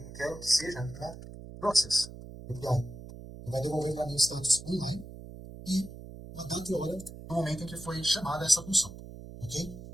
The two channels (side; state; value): right; noise; hum, 13 dB below the sound